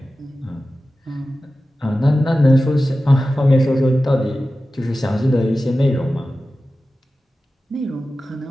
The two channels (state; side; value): normal; both; correlation 0.94